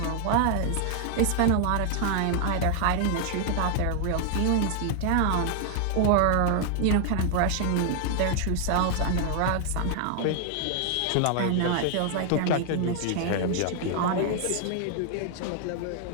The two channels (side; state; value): both; different; correlation 0.00